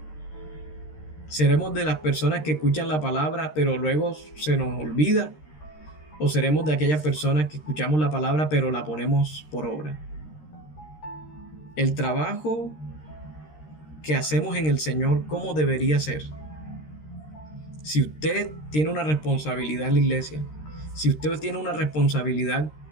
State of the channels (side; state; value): right; late; 13 ms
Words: ¿Seremos de las personas que escuchan la palabra pero luego se nos olvida? ¿O seremos de aquellas personas que escuchamos la palabra pero la ponemos por obra? El trabajo que hacemos en el Señor, ¿cómo debería ser? Si usted tiene una responsabilidad en la iglesia, si usted tiene una responsabilidad